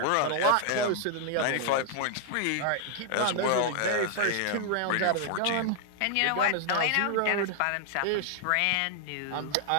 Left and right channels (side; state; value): both; different; correlation 0.00